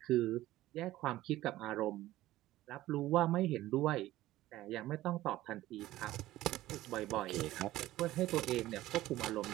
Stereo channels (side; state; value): left; quieter; 15.7 dB